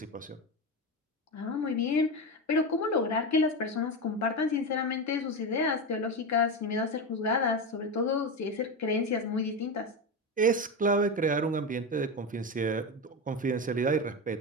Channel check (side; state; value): both; normal; correlation 0.17